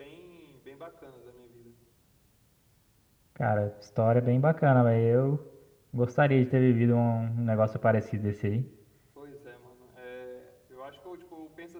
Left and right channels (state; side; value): identical; both; correlation 1.00